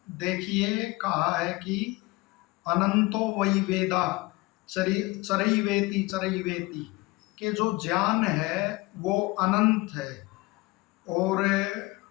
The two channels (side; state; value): right; quieter; 22.1 dB